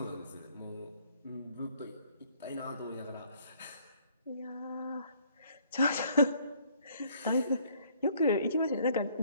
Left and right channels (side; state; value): both; inverted; correlation -0.62